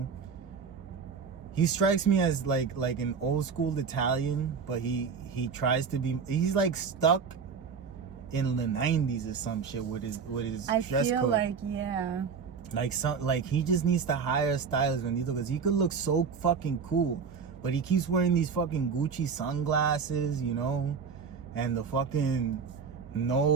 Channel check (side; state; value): left; quieter; 5.9 dB